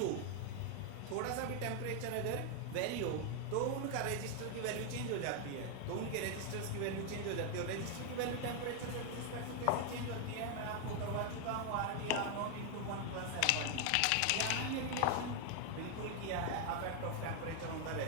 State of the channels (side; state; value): both; different; correlation 0.00